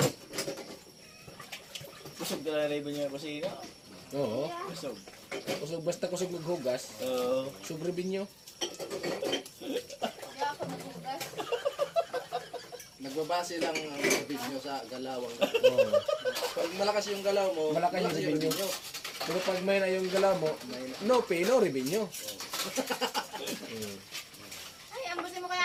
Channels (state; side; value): identical; both; correlation 1.00